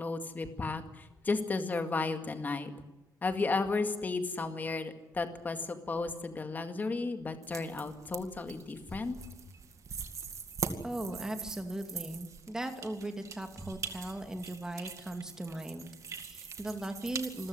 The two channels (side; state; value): both; normal; correlation 0.77